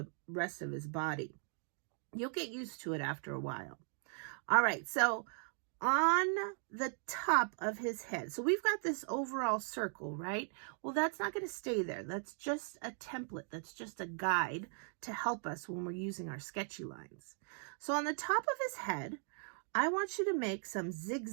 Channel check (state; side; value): silent; left; 52 dB below the other